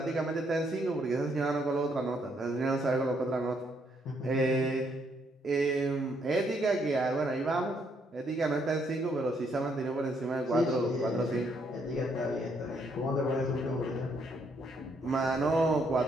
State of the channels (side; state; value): both; normal; correlation 0.72